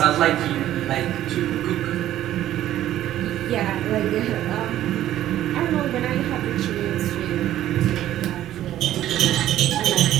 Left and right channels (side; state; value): left; quieter; 12.8 dB